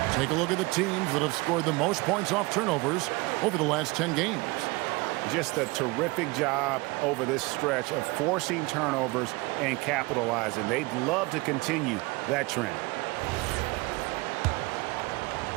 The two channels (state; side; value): quieter; left; 24.2 dB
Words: take a look at the teams that have scored the most points off turnovers over the last 10 games. Just a terrific job over this stretch of forcing turnovers and capitalizing. They'd love to continue that trend.